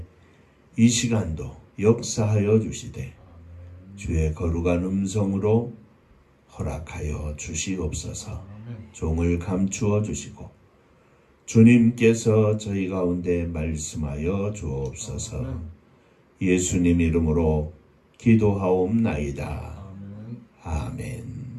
이 시간도 역사하여 주시되 주의 거룩한 음성으로 허락하여 주시옵소서. 종을 감추어 주시고 주님께서 저희 가운데 말씀하여 주옵소서. 예수님 이름으로 기도하옵나이다. 아멘.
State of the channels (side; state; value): both; identical; correlation 1.00